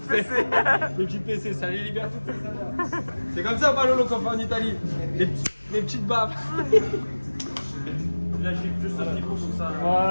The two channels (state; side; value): inverted; both; correlation -1.00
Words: PC, ça les libère toutes ces saveurs. C'est comme ça, Palolo, qu'on fait en Italie. Les petites baffes. Là, j'ai juste un petit peu comme ça.